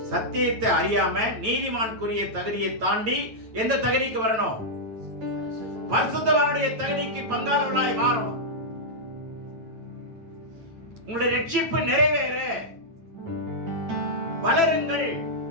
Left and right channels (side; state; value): left; late; 9.1 ms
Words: சத்தியத்தை அறியாம நீதிமானுக்குரிய தகுதியை தாண்டி எந்த தகுதிக்கு வரணும்? பரிசுத்தவானுடைய தகுதிக்கு பங்காளர்களாய் மாறணும். உங்களுடைய ரட்சிப்பு நிறைவேற வளருங்கள்,